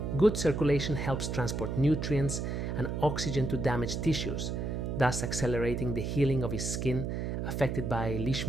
Good circulation helps transport nutrients and oxygen to damaged tissues, thus accelerating the healing of his skin affected by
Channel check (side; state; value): right; noise; hum, 2 dB below the sound